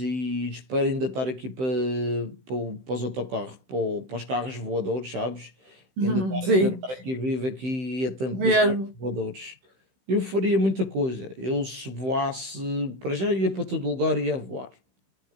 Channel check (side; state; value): left; late; 15 ms